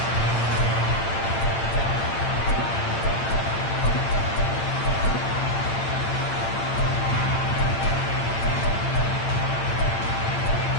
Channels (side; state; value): right; late; 8.8 ms